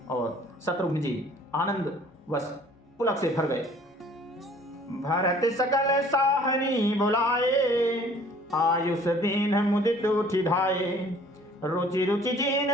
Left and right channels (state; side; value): normal; both; correlation 0.54